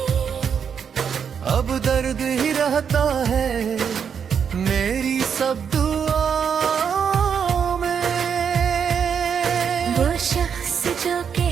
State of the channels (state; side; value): quieter; left; 7.2 dB